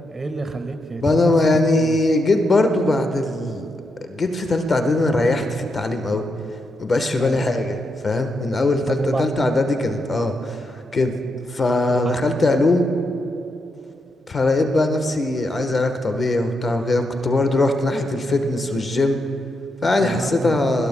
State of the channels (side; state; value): both; normal; correlation 0.83